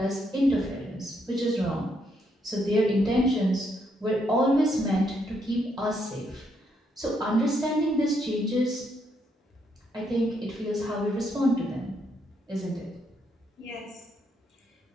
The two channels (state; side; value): normal; both; correlation 0.76